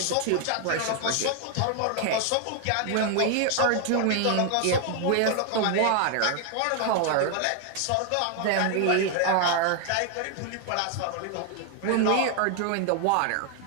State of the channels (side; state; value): both; different; correlation 0.00